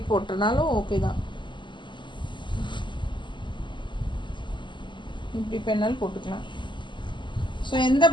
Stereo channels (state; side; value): late; right; 0.23 ms